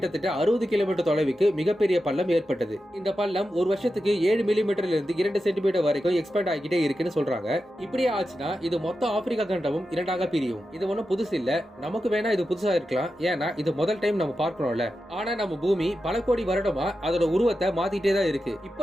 60 கிலோமீட்டர் தொலைவுக்கு மிகப்பெரிய பள்ளம் ஏற்பட்டது. இந்த பள்ளம் ஒரு வருஷத்துக்கு 7 மில்லிமீட்டர்ல இருந்து 2 சென்டிமீட்டர் வரைக்கும் எக்ஸ்பேண்ட் ஆகிட்டே இருக்குன்னு சொல்றாங்க. இப்படியே ஆச்சுன்னா இது மொத்த ஆப்பிரிக்கா கண்டமும் இரண்டாக பிரியும். இது ஒன்னும் புதுசு இல்ல, நமக்கு வேணா இது புதுசா இருக்கலாம், ஏன்னா இது முதல் டைம் நம்ம பார்க்கறோம்ல. ஆனா நம்ம பூமி பல கோடி வருடமா அதோட உருவத்தை மாத்திட்டே தான் இருக்கு. இப்போ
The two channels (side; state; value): both; normal; correlation 0.90